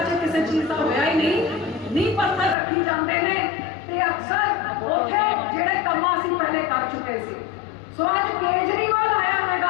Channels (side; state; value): right; drops out; at 2.6 s